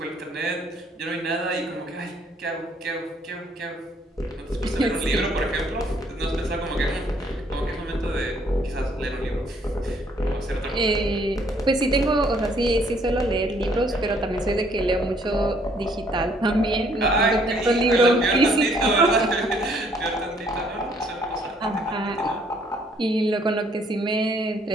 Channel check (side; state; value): both; normal; correlation 0.64